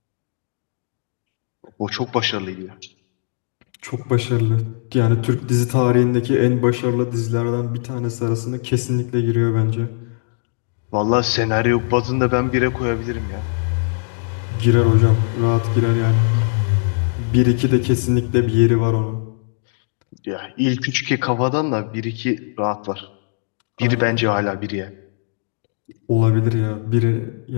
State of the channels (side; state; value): right; silent; digital silence